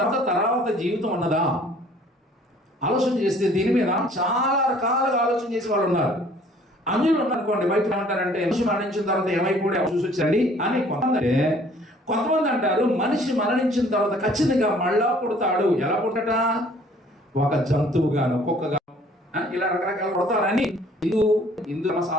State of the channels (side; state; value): both; normal; correlation 0.56